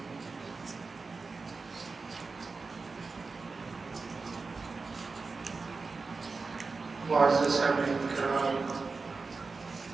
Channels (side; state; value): left; quieter; 4.2 dB